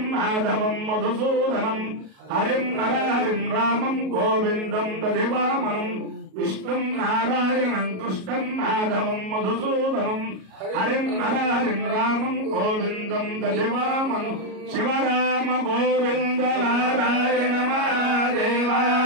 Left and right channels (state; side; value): late; left; 37 ms